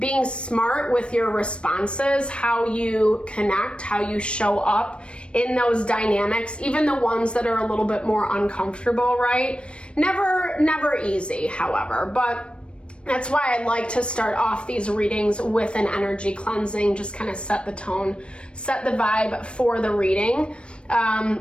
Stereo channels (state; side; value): late; right; 0.058 ms